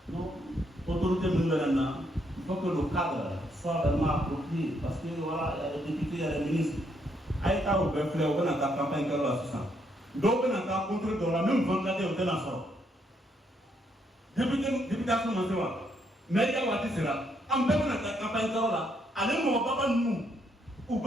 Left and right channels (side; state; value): both; normal; correlation 0.74